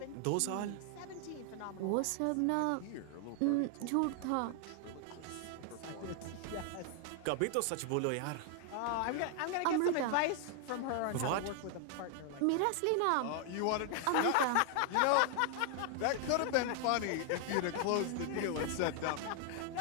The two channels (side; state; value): both; different; correlation 0.00